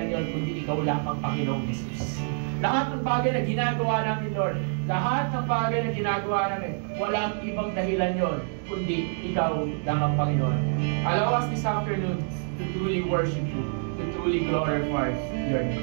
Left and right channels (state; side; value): silent; left; 60 dB below the other